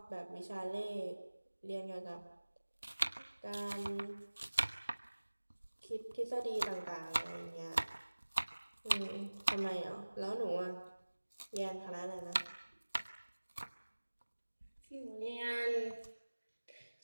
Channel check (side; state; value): both; inverted; correlation -1.00